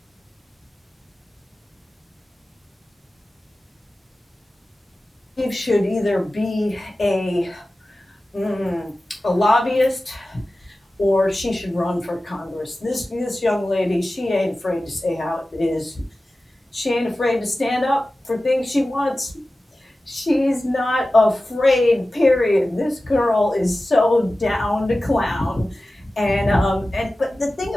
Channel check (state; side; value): normal; both; correlation 0.95